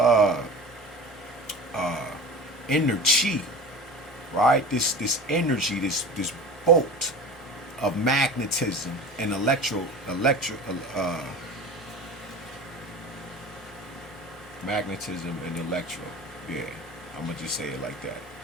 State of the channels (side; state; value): both; normal; correlation 0.35